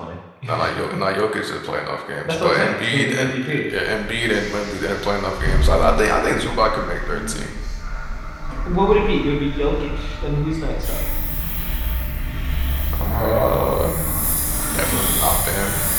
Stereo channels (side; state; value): both; identical; correlation 1.00